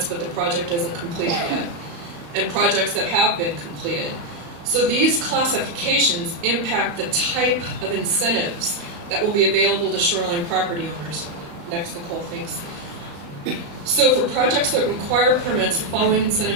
but the project isn't completed yet. And projects that have been completed. So these classifications impact the type of incentives that will be available to shoreline property owners. Next, Nicole, thanks. So for projects that require permits, the following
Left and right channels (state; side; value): late; left; 35 ms